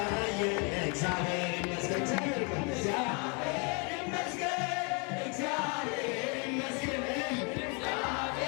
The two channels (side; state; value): right; quieter; 33.8 dB